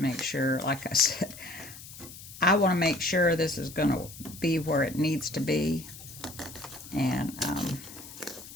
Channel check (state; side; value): noise; left; hiss, 15 dB below the sound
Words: make sure, like I said, I want to make sure this is going to be where it needs to be. And